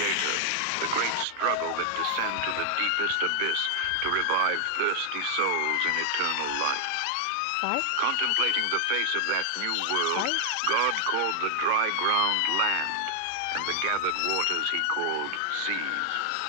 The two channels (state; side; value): different; both; correlation -0.01